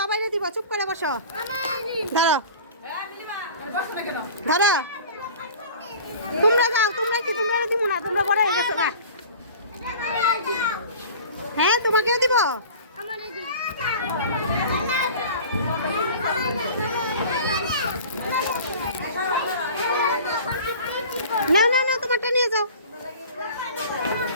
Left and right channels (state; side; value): inverted; both; correlation -0.41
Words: দিব, চুপ করে বসো। ধরো ধরো, তোমরা যাও, তোমরা কি তোমরা দিব না? তোমরা বড় হয়ে গেছো না? হ্যাঁ তোমাকেও দিব। না না না, তোমারটা নিয়ে যাও।